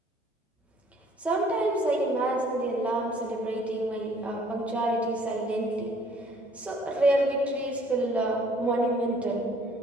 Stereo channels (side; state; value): both; normal; correlation 0.58